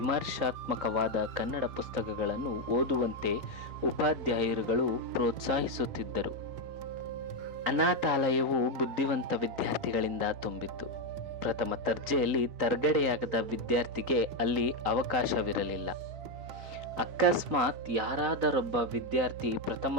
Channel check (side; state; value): left; late; 3.9 ms